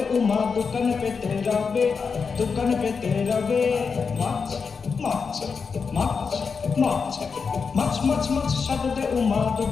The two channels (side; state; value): right; quieter; 5.4 dB